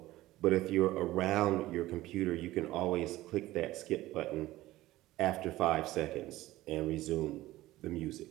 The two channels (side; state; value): left; quieter; 16.6 dB